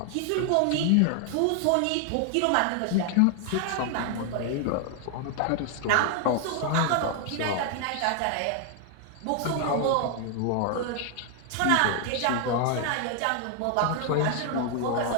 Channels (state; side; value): different; both; correlation 0.00